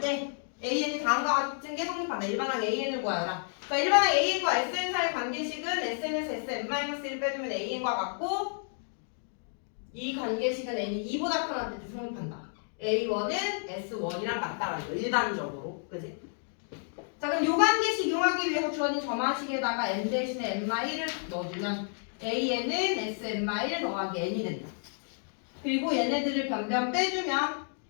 AN이 다음과 같은 게 성립한다. 일반항 AN을 구하라. 자, 일반항 AN과 SN 사이 관계식은 SN에서 SN-1을 빼주면 AN과 같고 이 관계식은 N이 2보다 커할 때 성립한다. A1은 S1이랑 같다라는 거 일반적으로. 그지? 자, 그럼 요 관계식 이용하기 위해서 주어진 점화식에다가 N 대신에 N-1을 넣어주면 AN은 SN-1 더하기 N이 된다. 그리고 얘네들을 변변 빼주면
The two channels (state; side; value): silent; right; 57 dB below the other